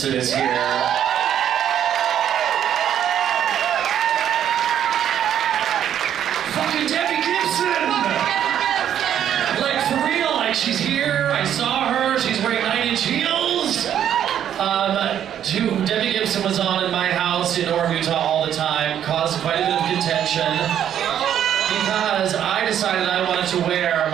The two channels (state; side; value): quieter; left; 10.0 dB